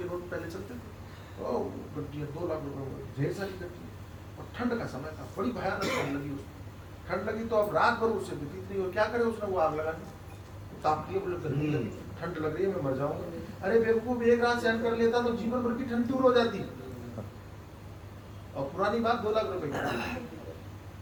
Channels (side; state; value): both; identical; correlation 1.00